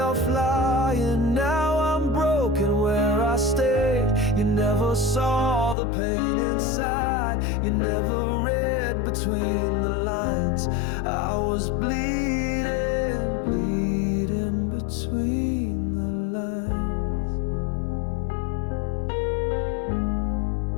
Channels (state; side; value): drops out; right; at 5.8 s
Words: flying, now I'm broken where I stayed. You never saw the pain inside, you never read between the lines. I was bleeding, bleeding between the lines.